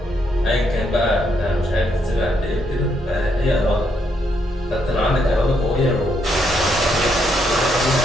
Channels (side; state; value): both; normal; correlation 0.76